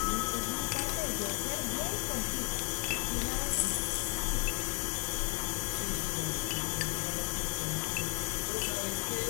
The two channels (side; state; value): right; quieter; 29.4 dB